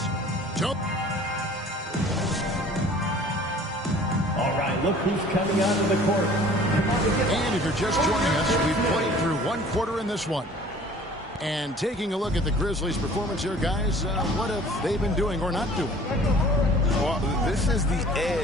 All right, look who's coming out of the court. And if you're just joining us, we've played through one quarter in this one. And taking a look at the Grizzlies' performance here, guys, what have they been doing or not doing? Well, this is the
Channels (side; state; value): both; normal; correlation 0.49